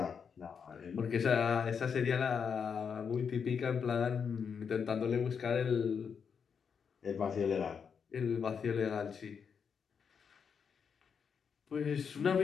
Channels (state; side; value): quieter; right; 6.6 dB